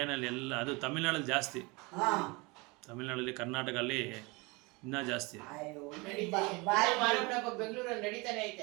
ಎಲ್ಲ, ಅದು ತಮಿಳ್ನಾಡಲ್ಲಿ ಜಾಸ್ತಿ, ತಮಿಳ್ನಾಡಲ್ಲಿ ಕರ್ನಾಟಕದಲ್ಲಿ ಇನ್ನೂ ಜಾಸ್ತಿ. ಬೆಂಗಳೂರಲ್ಲಿ ನಡೀತಾನೆ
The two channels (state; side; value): quieter; left; 26.3 dB